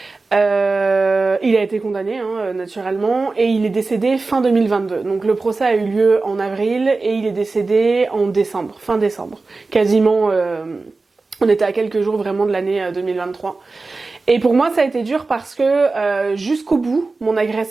Il a été condamné naturellement et il est décédé fin 2022. Donc le procès a eu lieu en avril et il est décédé en décembre, fin décembre. Quasiment, on était à quelques jours vraiment de l'année 2023. Et pour moi ça a été dur parce que jusqu'au bout, mon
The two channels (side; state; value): left; quieter; 3.7 dB